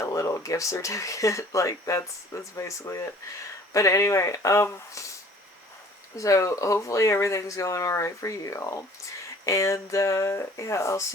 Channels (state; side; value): normal; both; correlation 0.51